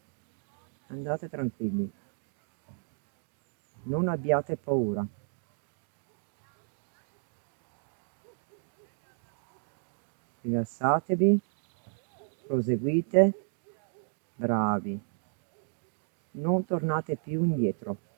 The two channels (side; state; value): left; silent; 56 dB below the other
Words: Andate tranquilli. Non abbiate paura. Rilassatevi, proseguite, bravi. Non tornate più indietro,